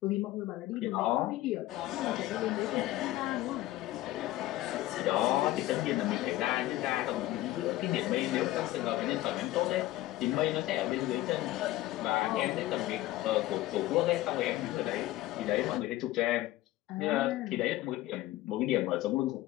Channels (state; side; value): quieter; right; 16.1 dB